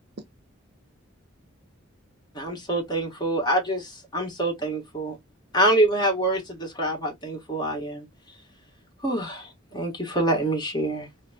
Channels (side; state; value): both; normal; correlation 0.16